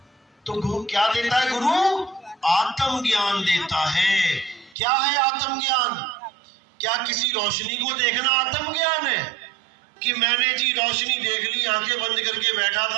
तो गुरु क्या देता है? गुरु आत्म ज्ञान देता है। क्या है आत्म ज्ञान? क्या किसी रोशनी को देखना आत्म ज्ञान है? कि मैंने जी रोशनी देख ली, आंखें बंद करके बैठा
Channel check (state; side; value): drops out; left; at 4.8 s